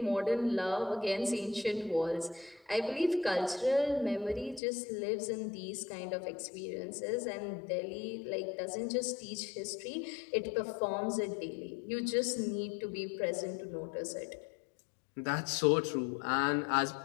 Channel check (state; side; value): drops out; right; at 4.6 s